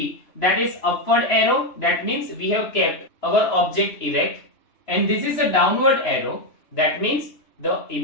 that is upward arrow, that means we have kept our object erect, and this is a downward arrow, that means the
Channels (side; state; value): right; late; 3.0 ms